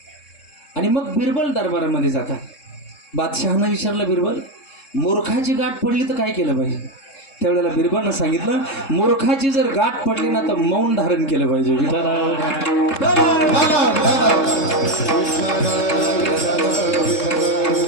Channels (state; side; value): late; right; 3.7 ms